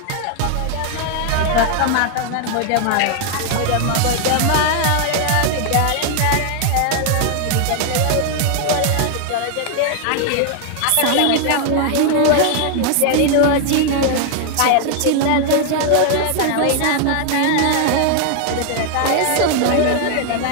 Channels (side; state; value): both; different; correlation 0.00